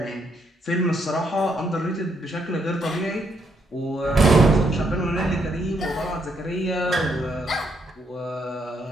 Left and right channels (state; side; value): normal; both; correlation 0.76